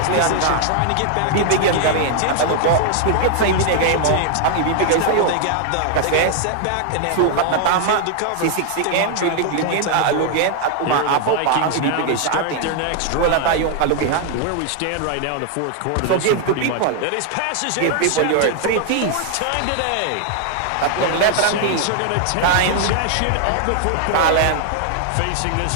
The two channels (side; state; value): both; different; correlation 0.00